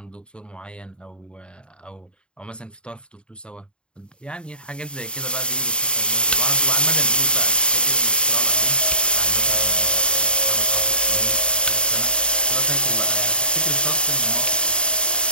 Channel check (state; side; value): late; right; 0.052 ms